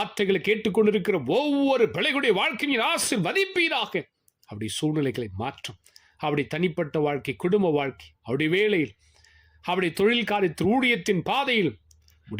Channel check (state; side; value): identical; both; correlation 1.00